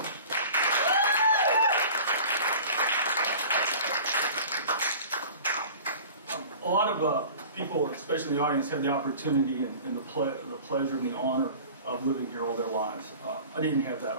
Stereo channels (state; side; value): inverted; both; correlation -0.41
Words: A lot of people, especially in the audience, have the opportunity and the pleasure and the honor of living here all their lives. I didn't have that